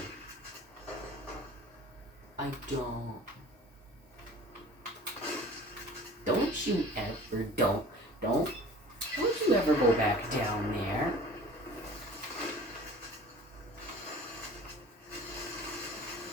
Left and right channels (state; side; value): normal; both; correlation 0.44